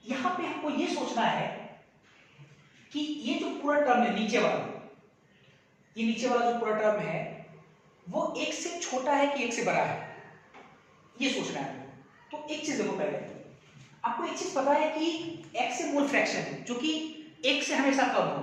यहां पे हमको ये सोचना है कि ये जो पूरा टर्म है नीचे वाला, ये नीचे वाला जो पूरा टर्म है वो 1 से छोटा है कि 1 से बड़ा है, ये सोचना है आपको। तो एक चीज देखो, पहले आपको एक चीज पता है कि x से मोल फ्रैक्शन है जो कि 1 से हमेशा कम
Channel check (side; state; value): both; identical; correlation 1.00